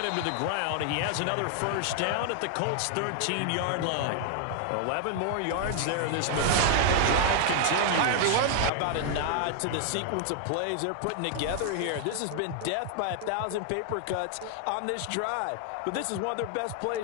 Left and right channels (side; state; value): both; different; correlation 0.00